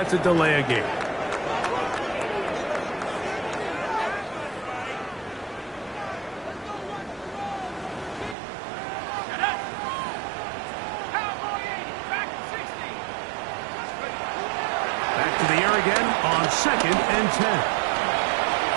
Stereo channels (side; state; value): left; drops out; at 8.3 s